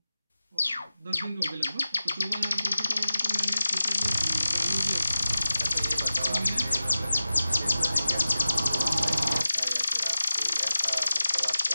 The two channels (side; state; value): both; inverted; correlation -0.95